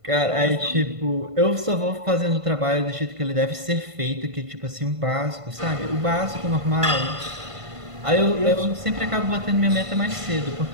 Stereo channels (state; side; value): late; left; 1.5 ms